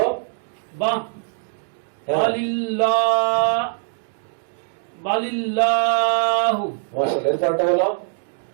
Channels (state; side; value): silent; left; digital silence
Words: বা হ্যাঁ। বালিল্লাহু। মাশাআল্লাহ, এরপরটা বলো।